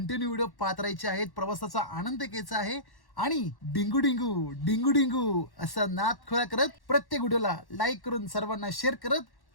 व्हिडिओ पाहत राहायचे आहेत, प्रवासाचा आनंद घ्यायचा आहे आणि डिंगू डिंगू डिंगू डिंगू असा नाद खोळा करत प्रत्येक व्हिडिओला लाईक करून सर्वांना शेअर करत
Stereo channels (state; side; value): late; right; 1.1 ms